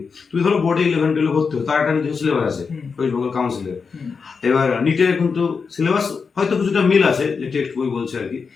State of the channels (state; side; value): quieter; right; 5.3 dB